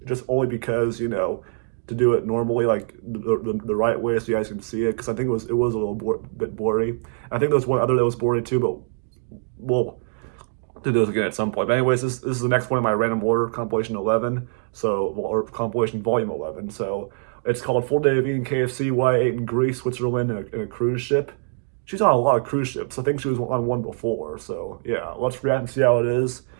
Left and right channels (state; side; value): silent; left; digital silence